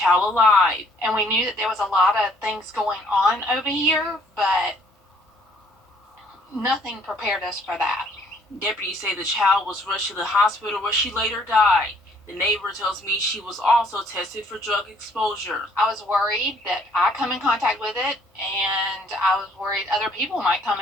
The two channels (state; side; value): normal; both; correlation 0.62